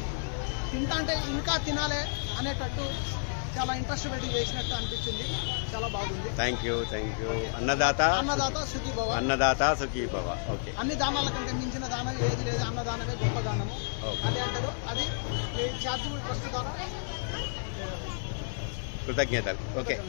తింటా అంటే ఇంకా తినాలి అనేటట్టు చాలా ఇంట్రెస్ట్ పెట్టి చేసినట్టు అనిపించింది. చాలా బాగుంది. Thank you thank you. Annadata Sukhibhava. Annadata Sukhibhava. Okay. అన్ని దానాల కంటే మించిన దానం ఏది లేదు. అన్నదానమే గొప్ప దానము అని అంటారు. అది చారిటబుల్ ట్రస్ట్ ద్వారా కృతజ్ఞతలు. Okay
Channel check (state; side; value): silent; right; 57 dB below the other